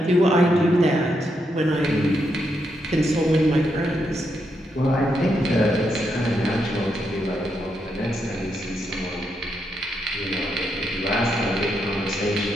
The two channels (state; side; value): normal; both; correlation 0.81